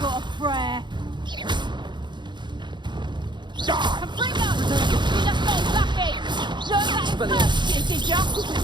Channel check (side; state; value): left; late; 0.22 ms